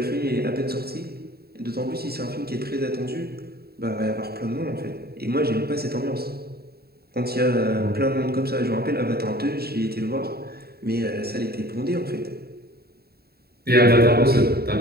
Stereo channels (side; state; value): left; late; 0.46 ms